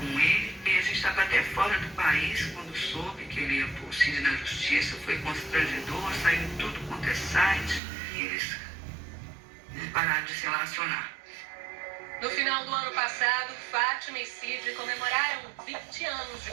ele. E a gente estava até fora do país quando soube que ele ia pôr o Cid na Justiça. Foi constrangedor, saiu tudo quanto é site e eles pararam de se relacionar. No final do ano passado, Fátima e Cid comemoraram 20 anos de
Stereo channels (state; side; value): drops out; left; at 7.8 s